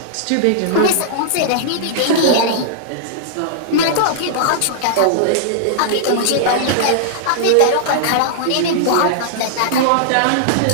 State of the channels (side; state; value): both; different; correlation -0.02